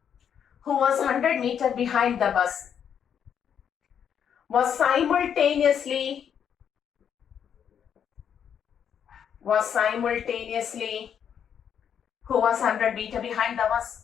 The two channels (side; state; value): right; quieter; 8.3 dB